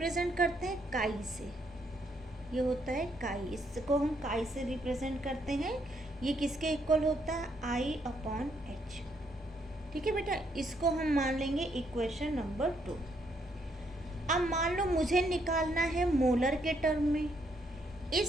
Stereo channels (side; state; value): both; normal; correlation 0.74